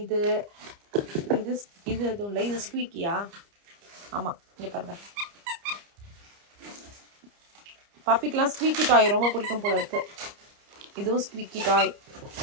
இது இது இது எதுவும் இல்லை, இது ஸ்குவீக்கியா? ஆமாம், இங்கே பாருங்கள். பப்பிக்கெலாம் ஸ்குவீக்கி டாய் ரொம்ப பிடிக்கும் போல இருக்குது. இதுவும் ஸ்குவீக்கி டாய்,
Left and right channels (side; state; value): left; late; 29 ms